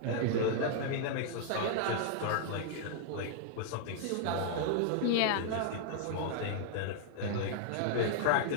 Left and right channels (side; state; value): both; different; correlation -0.01